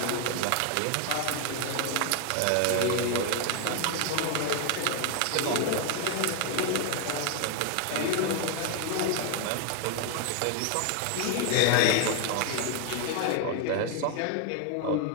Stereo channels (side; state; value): both; different; correlation 0.00